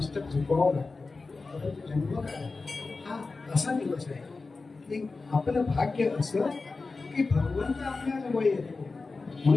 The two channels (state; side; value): quieter; right; 3.9 dB